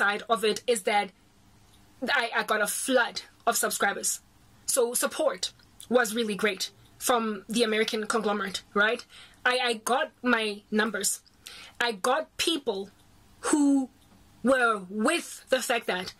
of it is that I got a flood of subscribers. So support was really great from the American conglomerate, right? I got my numbers. I got people who were with the fact that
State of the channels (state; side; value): identical; both; correlation 1.00